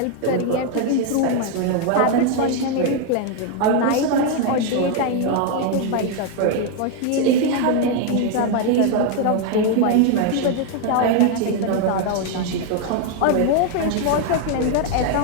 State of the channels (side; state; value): both; different; correlation 0.01